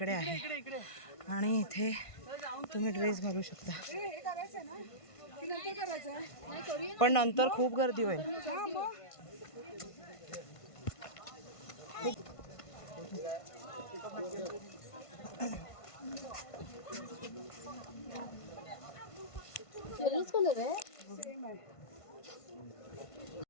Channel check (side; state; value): right; late; 1.5 ms